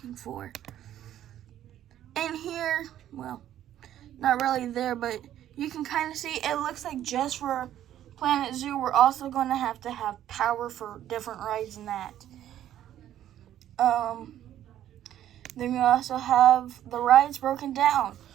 for. And here, well, not really there, but you can kind of see it looks like just for Planet Zoo, we're also going to have power for different rides and that. Then we also have the rides broken down.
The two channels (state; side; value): quieter; left; 11.7 dB